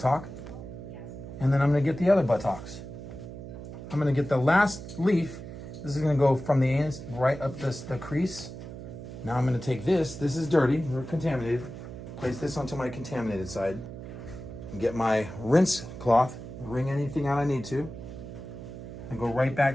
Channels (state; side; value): noise; right; hum, 11 dB below the sound